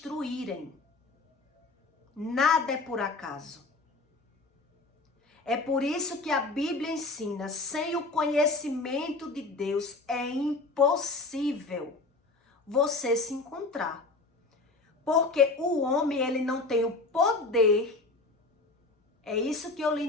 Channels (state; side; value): quieter; right; 3.4 dB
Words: Nada é por acaso. É por isso que a Bíblia ensina, sem o conhecimento de Deus é impossível você se encontrar. Porque o homem, ele não tem o poder, é isso que eu li